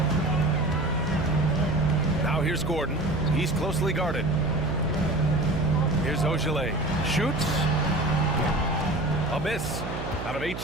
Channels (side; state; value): right; noise; hum, 7 dB below the sound